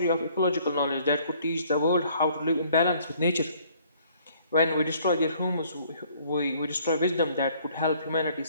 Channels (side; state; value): both; inverted; correlation -0.61